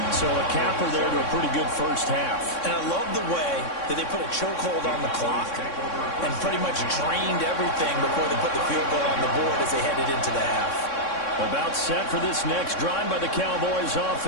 So a capper there to a pretty good 1st half. And I love the way that they put a chokehold on the clock and pretty much drained everything before they put the field goal on the board as they headed into the half. About set for this next drive by the Cowboys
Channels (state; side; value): late; right; 3.6 ms